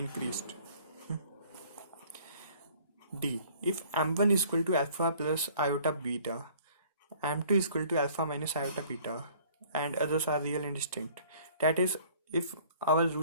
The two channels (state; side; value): inverted; both; correlation -0.53